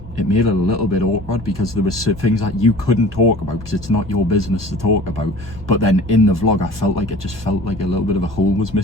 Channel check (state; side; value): normal; both; correlation 0.43